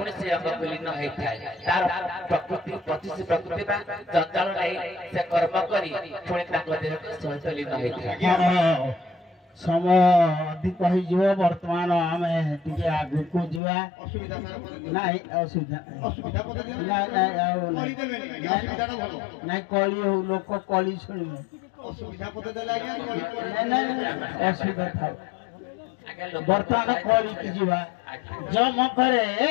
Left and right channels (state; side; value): drops out; right; at 13.6 s